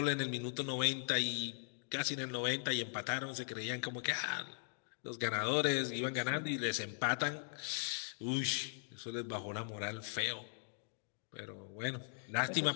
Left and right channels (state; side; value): silent; right; digital silence